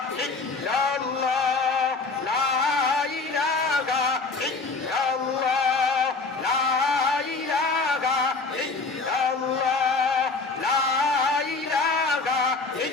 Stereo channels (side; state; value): right; quieter; 4.0 dB